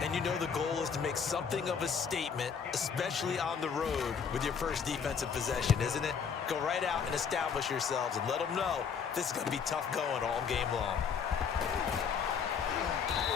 And you know the goal is to make something of a statement, especially on the road with your first defensive possession, isn't it? Go right out and establish yourselves and let them know this is going to be tough going all game long.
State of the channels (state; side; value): quieter; right; 6.6 dB